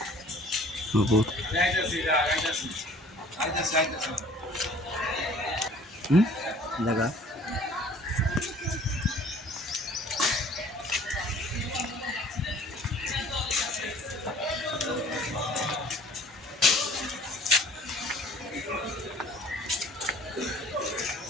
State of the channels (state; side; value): normal; both; correlation 0.52